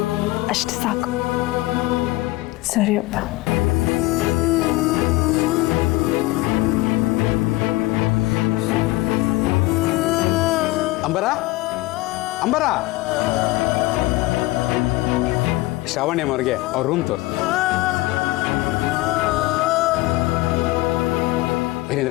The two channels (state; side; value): quieter; right; 19.8 dB